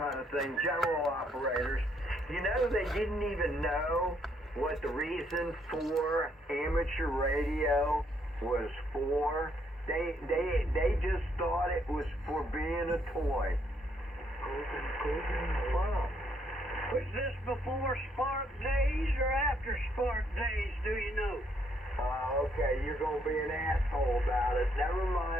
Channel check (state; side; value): normal; both; correlation 0.71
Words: of thing. General operators. You know, they didn't even know what the reason for amateur radio was for. They just thought it was for being a toy. Wow. Was this before Spark Days or after Spark Days, do you know? Okay, you're going to be an asshole about it. Never